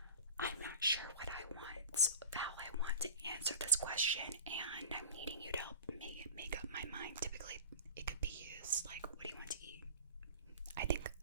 I'm not sure what I want, how I want to answer this question, and I'm needing you to help me make up my mind. Typically, it could be used like, what do you want to eat? I think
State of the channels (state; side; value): inverted; both; correlation -0.35